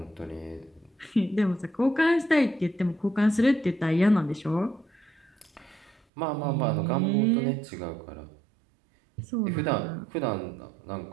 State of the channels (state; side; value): drops out; left; at 6.0 s